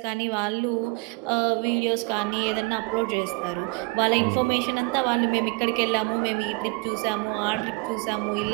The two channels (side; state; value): left; quieter; 27.4 dB